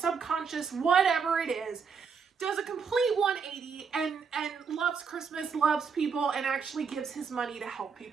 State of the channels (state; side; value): quieter; left; 5.9 dB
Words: whatever it is, does a complete 180 and loves Christmas, loves people, and actually gives his money to help